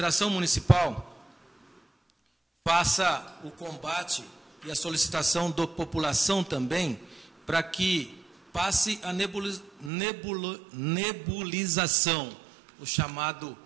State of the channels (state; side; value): drops out; left; at 9.9 s